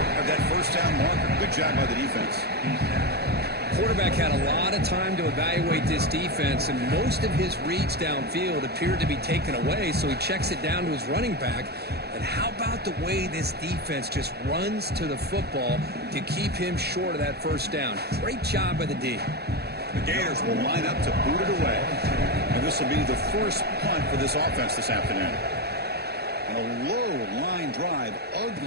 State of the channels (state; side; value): late; left; 0.47 ms